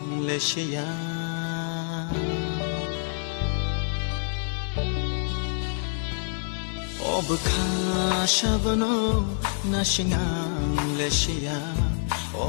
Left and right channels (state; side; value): silent; right; 60 dB below the other